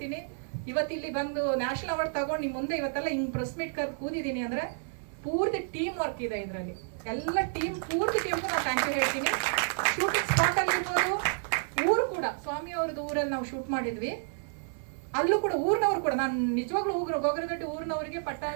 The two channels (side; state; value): left; silent; 58 dB below the other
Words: ಇವತ್ತಿಲ್ಲಿ ಬಂದು ನ್ಯಾಷನಲ್ ಅವಾರ್ಡ್ ತಗೊಂಡು ನಿಮ್ ಮುಂದೆ ಇವತ್ತೆಲ್ಲ ಹಿಂಗ್ ಪ್ರೆಸ್ ಮೀಟ್ ಕರೆದು ಕೂದಿದ್ದೀನಿ ಅಂದ್ರೆ ಪೂರ್ತಿ ಟೀಮ್ ವರ್ಕ್ ಇದೆ ಇದರಲ್ಲಿ. ಎಲ್ಲ ಪೂರ್ತಿ ಟೀಮ್ ನಾನು ಥ್ಯಾಂಕ್ ಯು ಹೇಳ್ತೀನಿ. ಶೂಟಿಂಗ್ ಸ್ಪಾಟ್ ಅಲ್ಲಿ ಇರ್ಬೋದು, ಊರು ಕೂಡ ಸ್ವಾಮಿ ಅವ್ರದ್ದು ಊರಲ್ಲಿ ನಾವು ಶೂಟ್ ಮಾಡಿದ್ವಿ, ಅಲ್ಲೂ ಕೂಡ ಊರಿನವ್ರು ಕೂಡ, ನಾನು ನಿಜವಾಗ್ಲೂ ಗೋಗರದೊಡ್ಡಿ ಊರಿನವರಿಗೆ,